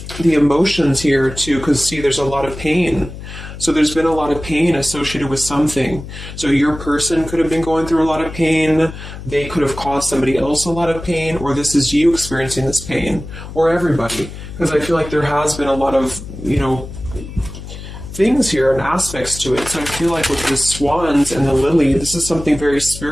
the emotions here to, because see, there's a lot of pain. So there's been a lot of pain associated with something. So your person could have been going through a lot of pain. They could have caused somebody else a lot of pain, or this is you experiencing this pain, or everybody. Because I feel like there has been a lot of, things here and aspects to it. So I feel like with the swans and the lily, this is something very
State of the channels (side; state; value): left; noise; hum, 12 dB below the sound